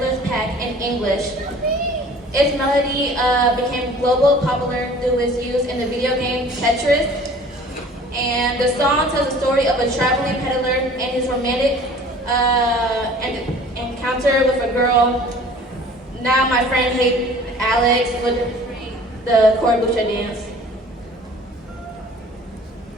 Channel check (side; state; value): both; normal; correlation 0.48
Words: pack in English. Its melody became global popular through its use in the video game Tetris, and the song tells the story of a traveling peddler and his romantic encounter with a girl. Now my friend Alex would demonstrate the Korabusha dance.